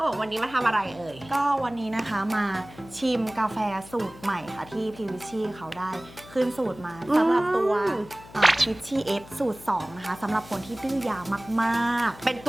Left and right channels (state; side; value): noise; left; hum, 20 dB below the sound